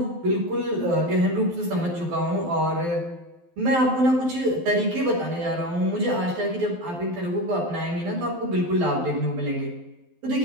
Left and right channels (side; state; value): left; late; 12 ms